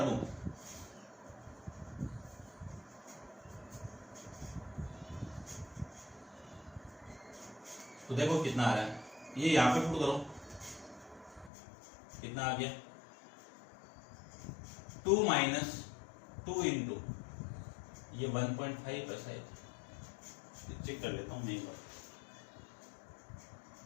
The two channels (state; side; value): drops out; right; at 11.5 s